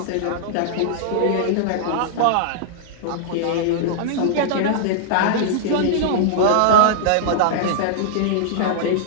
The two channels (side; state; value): both; different; correlation -0.01